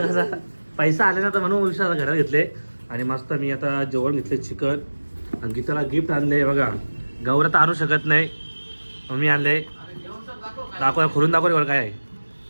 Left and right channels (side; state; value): both; inverted; correlation -1.00